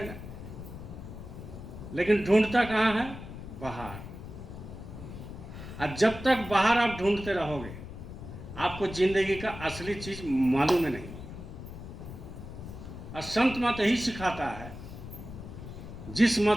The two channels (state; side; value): noise; left; rumble, 11 dB below the sound